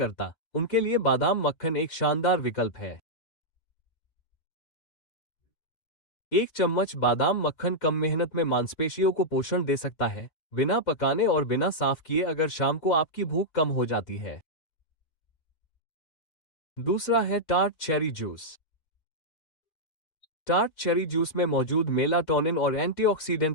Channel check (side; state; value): right; late; 4.1 ms